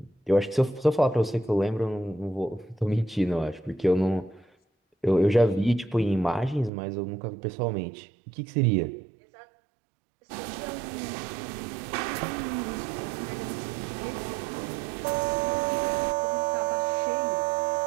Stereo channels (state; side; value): drops out; left; at 6.7 s